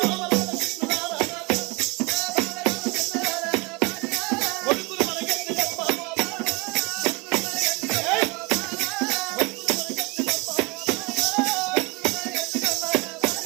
కొడుకులు మనకెందుకమ్మా బాబా, జై కొడుకులు మనకెందుకమ్మా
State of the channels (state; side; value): quieter; left; 27.3 dB